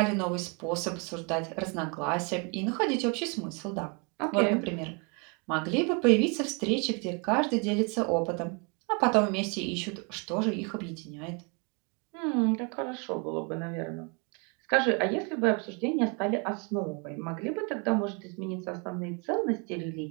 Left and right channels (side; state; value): left; quieter; 33.2 dB